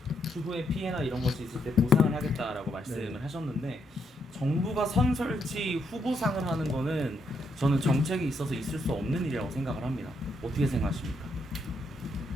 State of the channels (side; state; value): both; normal; correlation 0.77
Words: 추후에 피해나 이런 것이 있을 때 보상을 하겠다라고 말씀을 네. 하셨는데 정부가 선 설치 후 보상을 하는 거는 저는 정책이 있어서 있을 수 없는 일이라고 생각을 합니다. 어떻게 생각하십니까?